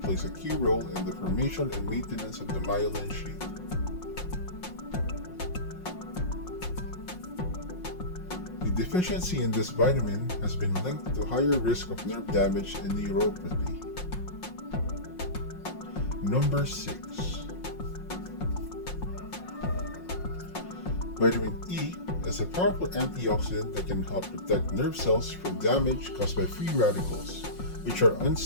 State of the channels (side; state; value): right; late; 5.6 ms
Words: plays a key role in the formation and maintenance of the myelin sheath. The deficiency in this vitamin has been linked to higher risk of nerve damage and neuropathy. Number 6. Vitamin E is a powerful antioxidant that can help protect nerve cells from damage caused by free radicals, which are